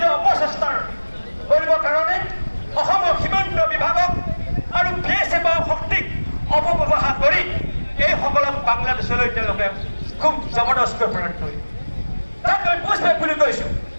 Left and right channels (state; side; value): inverted; both; correlation -1.00